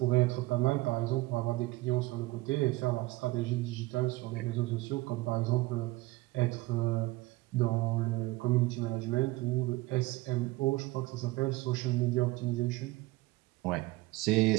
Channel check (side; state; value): left; quieter; 20.1 dB